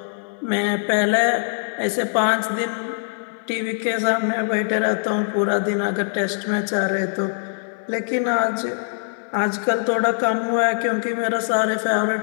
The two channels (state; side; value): silent; right; digital silence